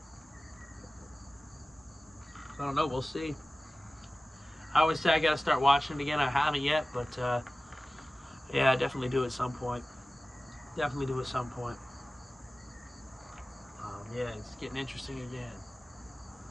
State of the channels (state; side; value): normal; both; correlation 0.97